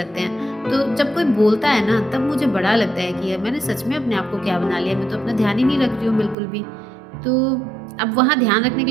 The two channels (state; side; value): drops out; left; at 6.4 s